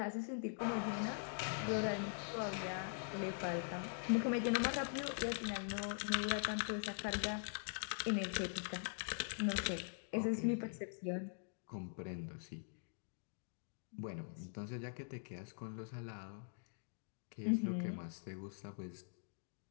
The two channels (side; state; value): right; silent; digital silence